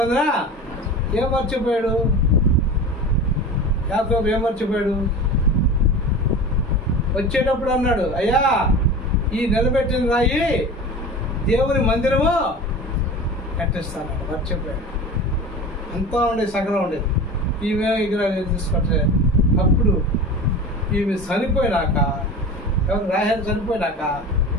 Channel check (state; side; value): normal; both; correlation 0.33